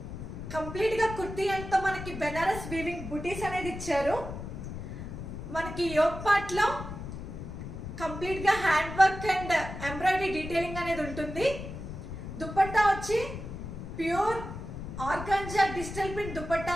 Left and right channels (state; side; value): noise; left; rumble, 8 dB below the sound